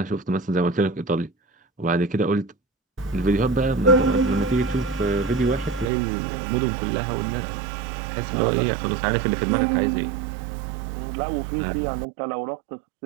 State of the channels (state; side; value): drops out; left; at 5.9 s